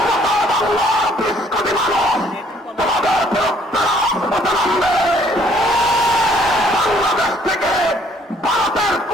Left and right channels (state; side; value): normal; both; correlation 0.62